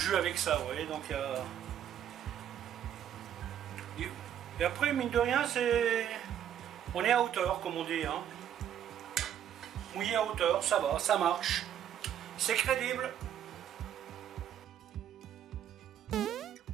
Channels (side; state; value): left; quieter; 10.0 dB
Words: avec ça, vous voyez, donc il y a... Et après, mine de rien, c'est... On est à hauteur, comme on dit, hein. Mouillé à hauteur, ça va, ça marche. C'est crédible.